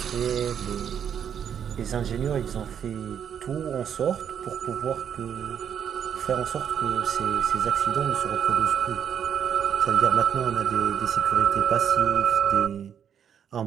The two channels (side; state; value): left; quieter; 8.4 dB